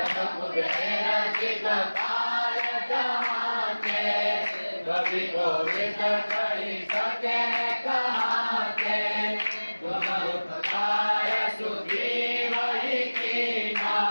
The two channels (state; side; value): inverted; both; correlation -1.00